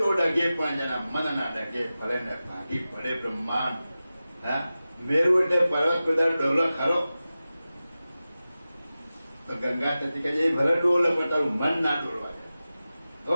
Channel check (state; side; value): inverted; both; correlation -0.95